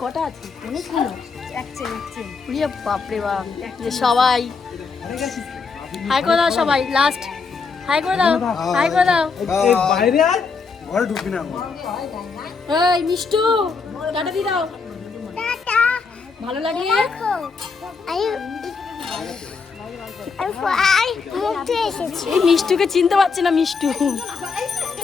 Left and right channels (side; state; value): right; quieter; 4.9 dB